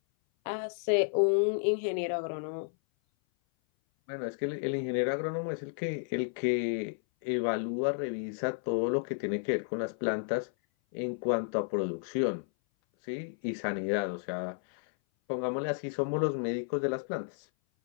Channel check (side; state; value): right; silent; 56 dB below the other